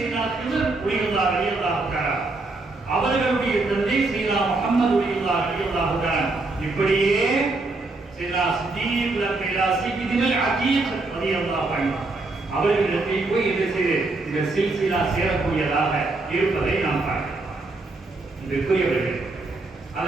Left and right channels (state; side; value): quieter; left; 3.3 dB